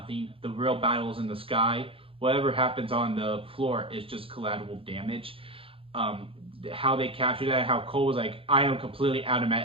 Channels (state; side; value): late; left; 0.27 ms